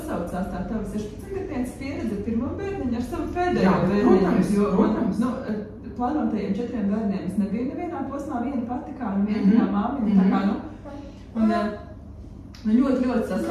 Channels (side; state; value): both; identical; correlation 1.00